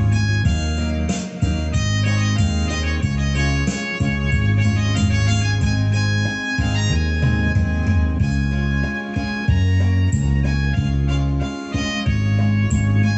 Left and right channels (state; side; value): identical; both; correlation 1.00